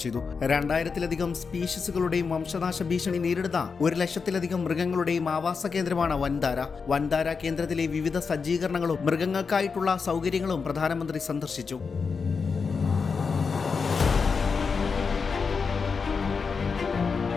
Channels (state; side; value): quieter; right; 5.3 dB